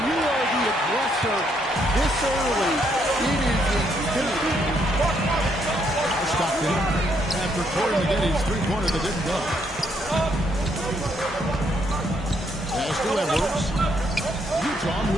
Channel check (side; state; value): both; normal; correlation 0.73